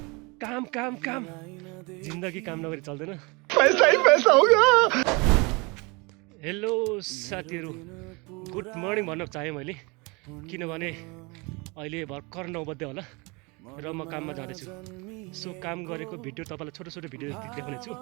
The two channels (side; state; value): left; quieter; 27.9 dB